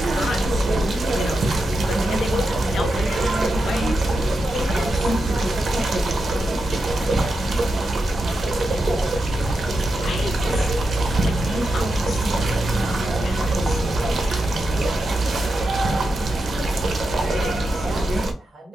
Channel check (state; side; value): normal; both; correlation 0.88